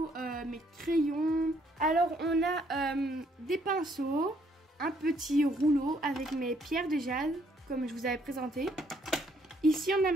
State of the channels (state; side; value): normal; both; correlation 0.68